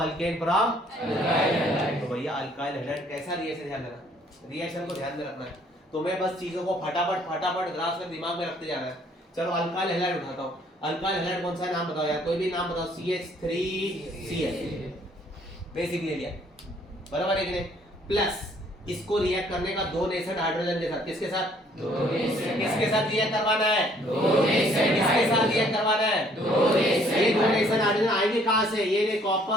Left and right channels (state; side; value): normal; both; correlation 0.62